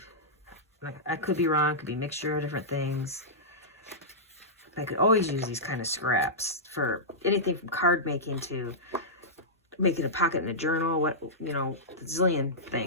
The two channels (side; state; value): both; normal; correlation -0.14